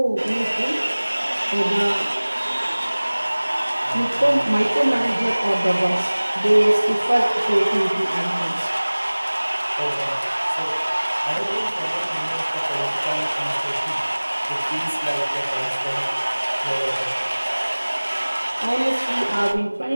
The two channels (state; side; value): inverted; both; correlation -1.00